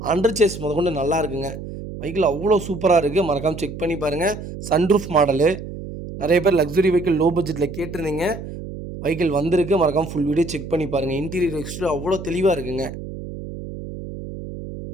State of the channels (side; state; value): right; noise; hum, 10 dB below the sound